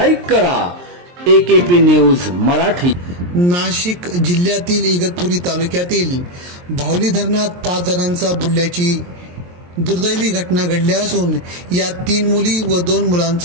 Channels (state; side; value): late; left; 23 ms